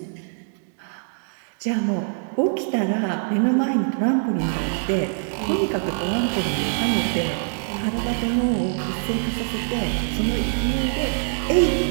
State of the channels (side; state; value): left; silent; 63 dB below the other